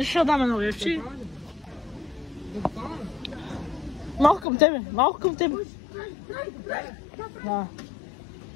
ще дам едно левче. Малко към тебе. Да.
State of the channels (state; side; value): drops out; right; at 4.5 s